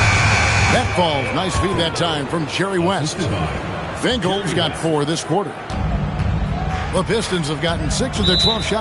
That falls. Nice feed that time from Jerry West. Finkel's got 4 this quarter. The Pistons have gotten 6 of their 12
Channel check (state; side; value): identical; both; correlation 1.00